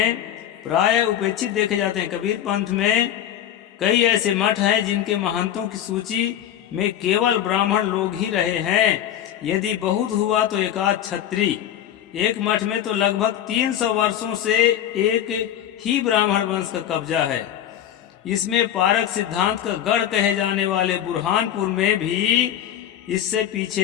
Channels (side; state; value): right; quieter; 10.8 dB